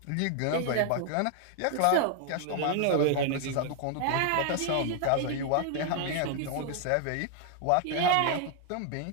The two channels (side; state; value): both; different; correlation 0.00